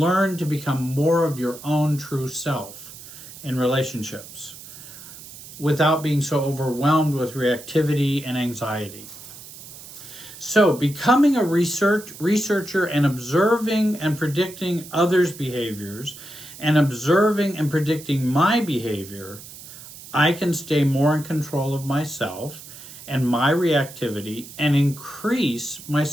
to become more of your own true self in relationships without being so overwhelmed with reactivity and anxiety. So, becoming a researcher and observing and predicting others' behaviors and observing and predicting my behavior, I can stay more in control of myself and my reactivity and increase my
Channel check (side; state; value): right; noise; hiss, 16 dB below the sound